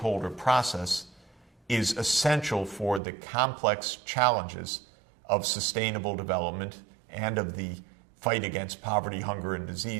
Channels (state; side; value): drops out; left; at 3.0 s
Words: process is essential for the complex challenges of sustainable development and of the fight against poverty, hunger, and